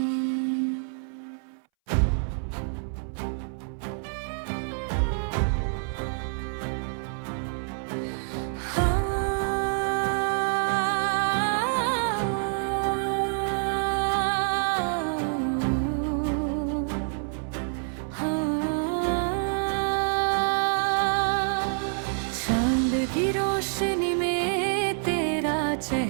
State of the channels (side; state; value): left; silent; 60 dB below the other